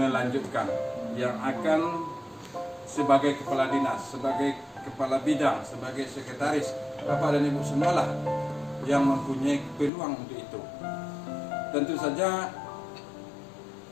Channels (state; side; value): drops out; right; at 9.9 s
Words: yang akan sebagai kepala dinas, sebagai kepala bidang, sebagai sekretaris, bapak dan ibu semualah yang mempunyai peluang untuk itu. Tentu saja